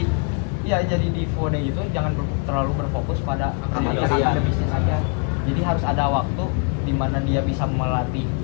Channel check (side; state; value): right; quieter; 39.7 dB